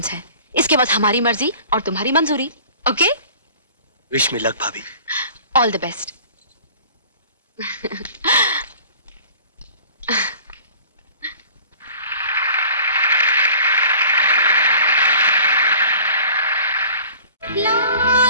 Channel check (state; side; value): inverted; both; correlation -0.46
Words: है। इसके बाद हमारी मर्जी और तुम्हारी मंजूरी। ओके? विश मी लक भाभी। All the best.